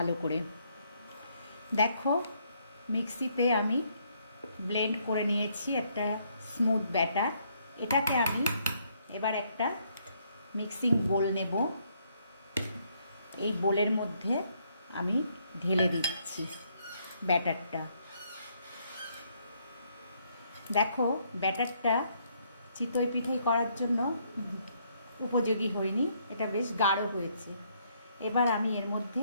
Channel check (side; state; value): both; inverted; correlation -0.71